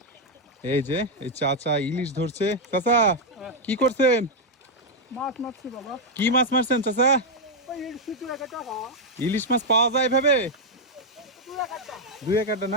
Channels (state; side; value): normal; both; correlation -0.01